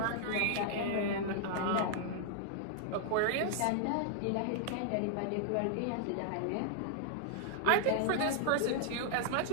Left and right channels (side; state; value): both; different; correlation -0.01